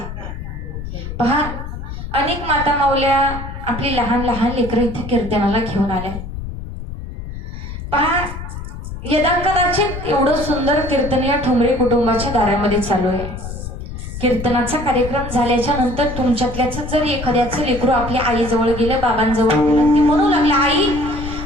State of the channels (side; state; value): left; noise; rumble, 8 dB below the sound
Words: पहा, अनेक माता माऊल्या आपली लहान लहान लेकरं इथे कीर्तनाला घेऊन आल्या. पहा, यदा कदाचित एवढं सुंदर कीर्तन या ठोंबरे कुटुंबाच्या दारामध्ये चालू आहे. कीर्तनाचा कार्यक्रम झाल्याच्या नंतर तुमच्यातल्याच जर एखाद्याचं लेकरू आपल्या आईजवळ गेलं, बाबांजवळ गेलं, ती म्हणू लागला, आई